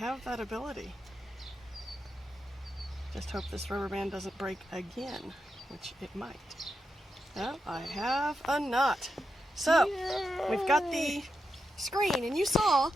that ability. Just hope this rubber band doesn't break again, which it might. Well, I have a knot. So, we've got the screen, and you saw,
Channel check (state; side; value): normal; both; correlation 0.87